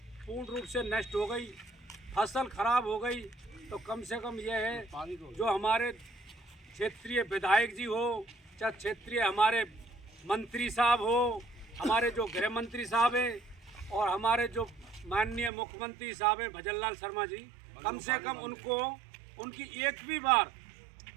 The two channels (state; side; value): drops out; left; at 15.5 s